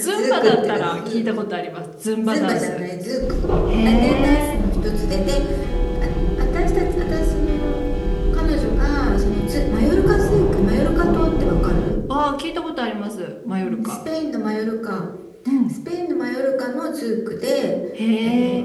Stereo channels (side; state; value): both; identical; correlation 1.00